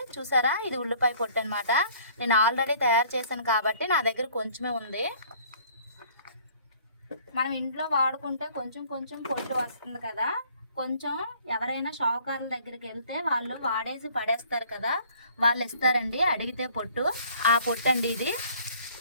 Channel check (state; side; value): inverted; both; correlation -0.56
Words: చూసారా, ఇది ఉల్లిపాయ పొట్టు అనమాట. నేను ఆల్రెడీ తయారు చేశాను కాబట్టి నా దగ్గర కొంచెమే ఉంది. మనం ఇంట్లో వాడుకుంటే కొంచెం కొంచెం పొట్టు వస్తుంది కదా. కొంచెం ఎవరైనా షావుకారుల దగ్గరికి వెళ్తే వాళ్ళు వాడేసి పడేస్తారు కదా, వాళ్ళు ఇస్తారండి అడిగితే పొట్టు. ఆ పొట్టు అండి ఇది.